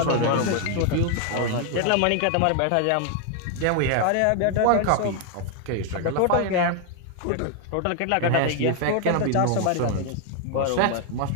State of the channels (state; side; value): different; both; correlation 0.00